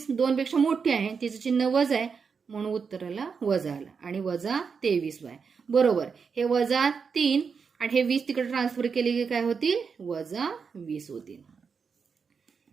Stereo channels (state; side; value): quieter; left; 5.7 dB